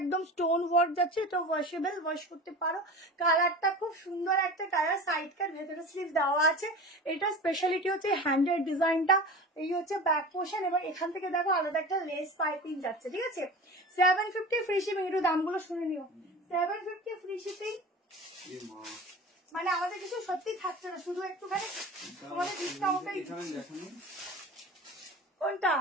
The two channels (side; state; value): both; normal; correlation 0.34